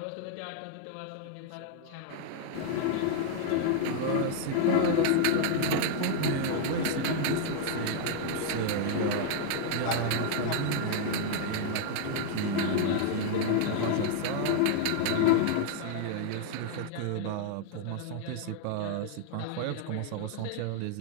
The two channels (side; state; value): both; different; correlation 0.00